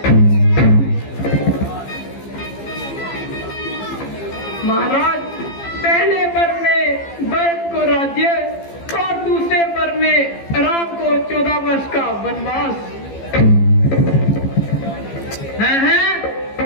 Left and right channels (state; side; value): late; right; 15 ms